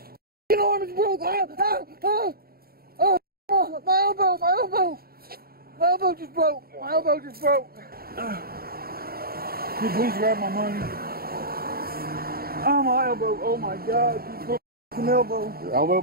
arm's broke! My arm is broke! Oh, my elbow! My elbow! My elbow just broke! My elbow just broke! Can you please grab my money? Oh, my elbow! Oh my God! You broke my elbow! Your elbow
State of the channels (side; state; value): left; late; 0.44 ms